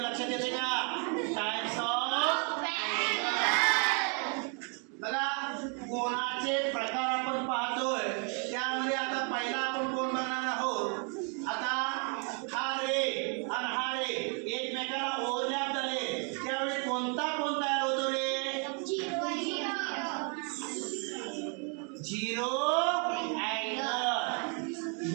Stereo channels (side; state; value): left; quieter; 38.4 dB